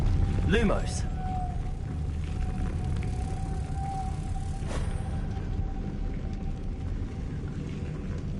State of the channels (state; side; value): identical; both; correlation 1.00